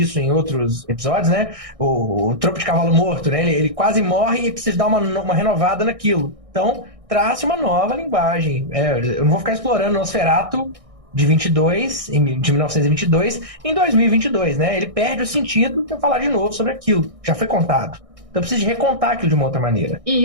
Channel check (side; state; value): left; late; 1.6 ms